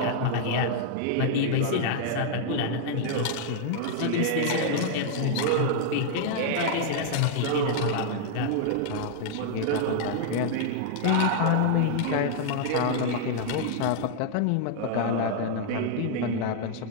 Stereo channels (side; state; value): both; different; correlation -0.01